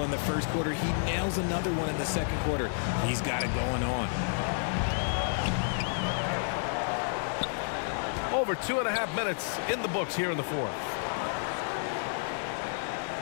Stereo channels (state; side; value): silent; right; digital silence